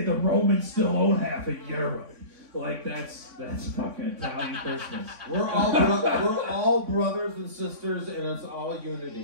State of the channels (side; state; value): left; late; 3.6 ms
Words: the Romans still own half of Europe. That's fucking Italian Christmas. We're all brothers and sisters, and it's all